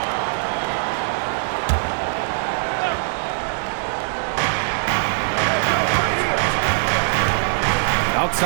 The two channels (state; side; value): silent; left; digital silence